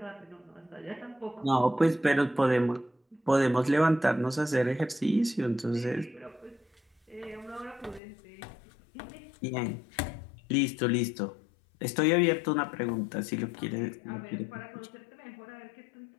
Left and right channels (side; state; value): right; drops out; at 8.0 s